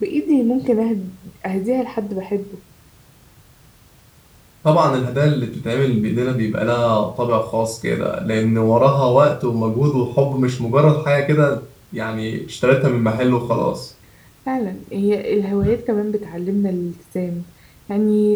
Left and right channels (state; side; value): identical; both; correlation 1.00